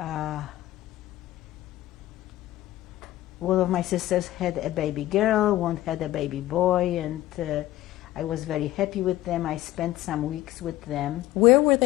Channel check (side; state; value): right; quieter; 15.5 dB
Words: One of my sisters had a baby girl, one had a baby boy, and I was very happy with them. I spent some weeks with them. Where were